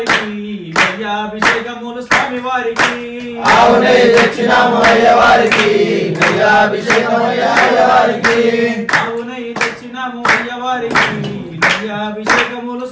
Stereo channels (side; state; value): both; identical; correlation 1.00